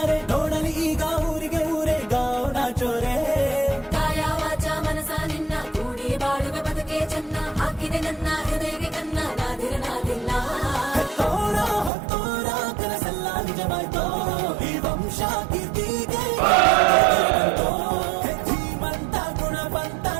ನೋಡಲಿ ಈಗ ಊರಿಗೆ ಊರೇ ಗಾವನ ಚೋರೆ. ಕಾಯ ವಾಚ ಮನಸ ನಿನ್ನ ಕೂಡಿ ಬಾಳುವೆ ಬದುಕೆ ಚೆನ್ನ, ಹಾಕಿದೆ ನನ್ನ ಹೃದಯಕ್ಕೆ ಕನ್ನ ನಾದಿರನಾದಿಲ್ಲ. ಹೆತ್ತೋರ ಹೊತ್ತೋರ ಕನಸೆಲ್ಲ ನಿಜವಾಯ್ತೋ, ಈ ವಂಶ ಕೀರ್ತಿಗೆ ಧೀಮಂತ ಗುಣವಂತ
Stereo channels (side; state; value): left; drops out; at 11.9 s